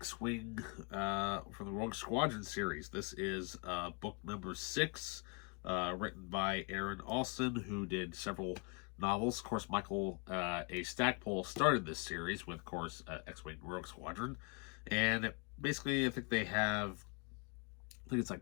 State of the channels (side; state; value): right; quieter; 34.0 dB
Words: from the Rogue Squadron series. This is book number 6, written by Aaron Alston, who did several novels. Of course, Michael A. Stackpole started this series with, of course, X-Wing Rogue Squadron. And basically, I think it's like